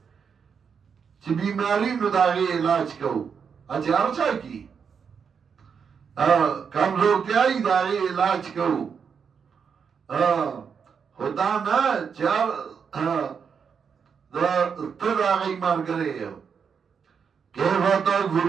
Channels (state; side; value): quieter; left; 6.5 dB